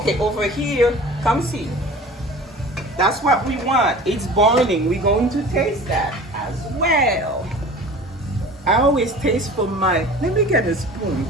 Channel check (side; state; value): both; normal; correlation 0.41